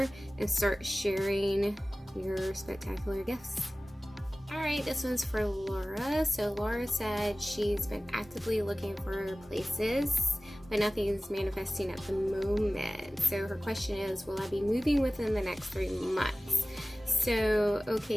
and start sharing your spectacular gifts. All right, this one's for Laura. So Laura said she's been actively looking for places, but nothing's manifesting at the moment. So her question is, will I be moving within the next 3 months? So,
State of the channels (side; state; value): both; normal; correlation 0.97